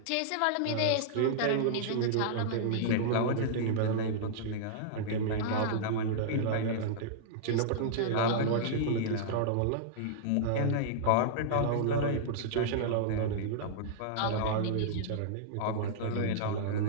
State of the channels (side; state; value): both; different; correlation -0.02